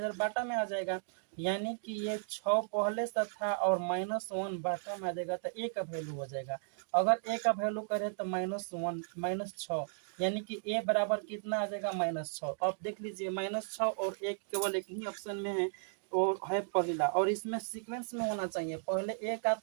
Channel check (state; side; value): silent; left; digital silence